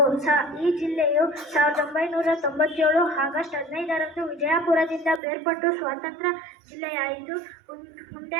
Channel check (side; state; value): left; drops out; at 5.2 s